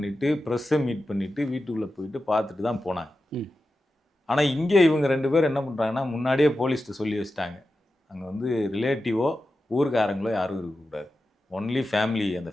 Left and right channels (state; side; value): normal; both; correlation 0.92